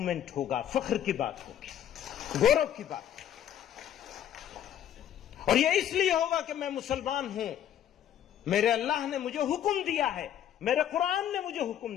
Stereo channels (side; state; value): right; quieter; 10.5 dB